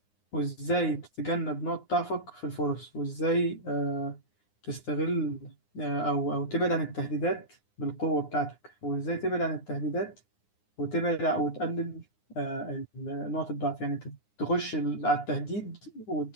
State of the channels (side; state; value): right; late; 9.7 ms